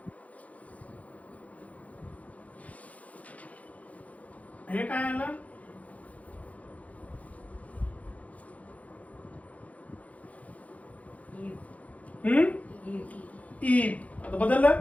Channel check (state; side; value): late; right; 0.069 ms